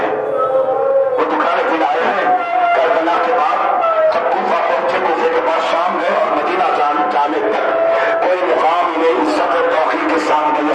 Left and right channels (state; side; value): identical; both; correlation 1.00